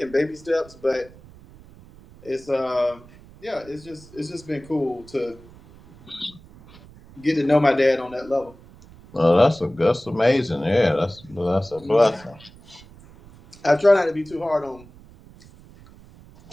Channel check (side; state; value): right; noise; rumble, 23 dB below the sound